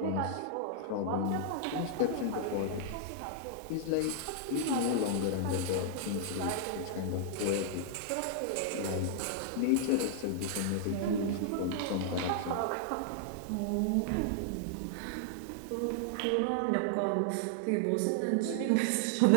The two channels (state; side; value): different; both; correlation 0.00